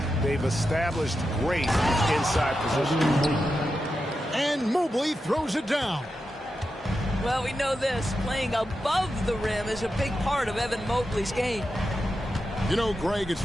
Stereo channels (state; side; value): normal; both; correlation 0.89